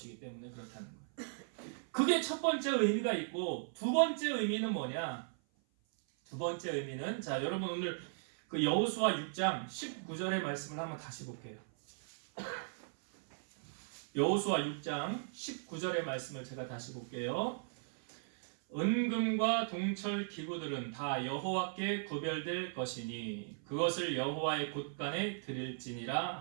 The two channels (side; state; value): left; silent; 53 dB below the other